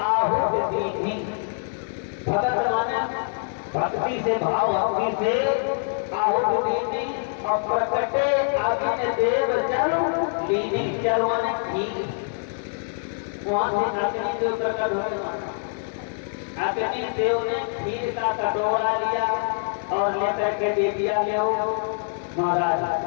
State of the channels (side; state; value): right; silent; digital silence